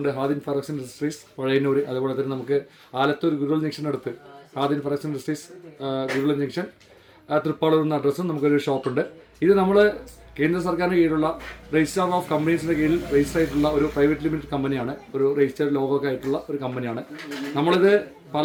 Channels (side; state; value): both; identical; correlation 1.00